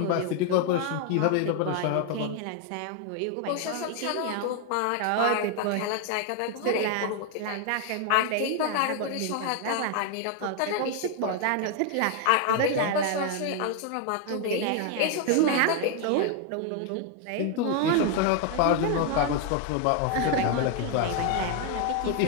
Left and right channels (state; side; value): different; both; correlation 0.01